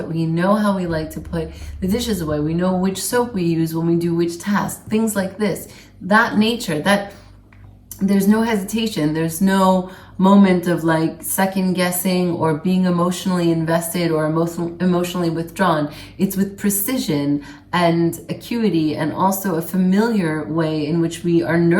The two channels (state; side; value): identical; both; correlation 1.00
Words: We know how we like to put the dishes away. We know which soap we use when we do which task, things like this. That nature, that there's no hesitation. There's no moment of like second guessing or being emotionally invested or emotionally withdrawn. It's with precision and acuity, and also a familiar way in which we are